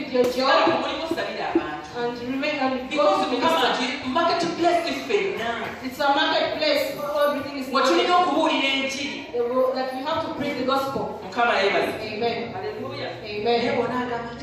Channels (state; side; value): identical; both; correlation 1.00